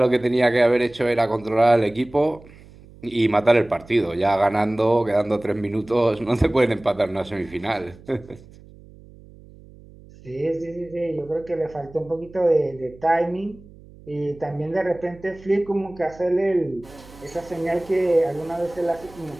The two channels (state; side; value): noise; right; hum, 22 dB below the sound